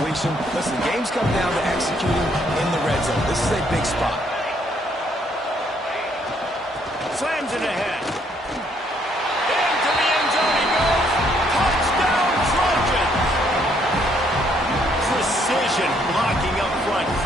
Listen, games come down to executing in the red zone. This is a big spot. Slams it ahead. Into the end zone he goes. Touchdown, Trojans! Precision blocking up front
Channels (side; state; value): both; normal; correlation 0.69